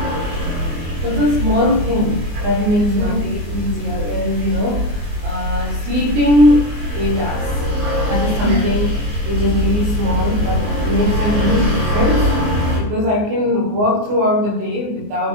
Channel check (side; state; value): left; late; 24 ms